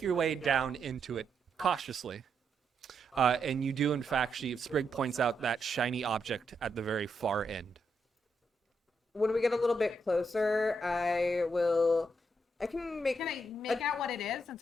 your way down into it cautiously. And you do, in fact, Sprig points out that shiny object at the very far end. When we get a little bit closer, I can make. Can I make out what it is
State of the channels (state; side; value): normal; both; correlation 0.80